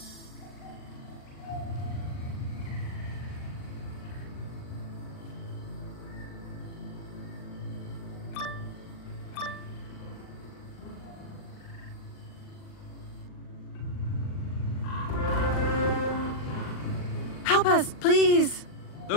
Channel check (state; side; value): late; right; 39 ms